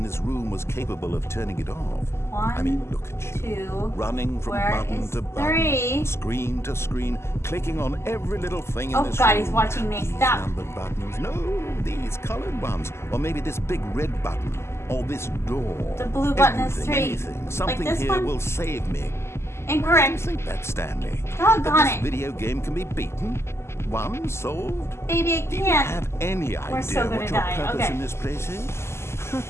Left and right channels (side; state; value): right; late; 0.13 ms